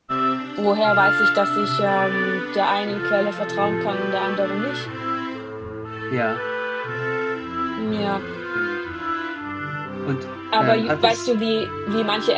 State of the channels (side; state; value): both; identical; correlation 1.00